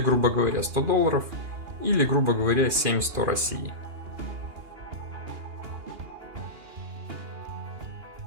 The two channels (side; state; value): left; late; 2.4 ms